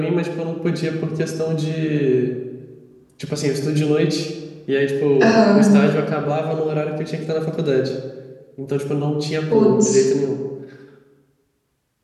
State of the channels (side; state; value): both; identical; correlation 1.00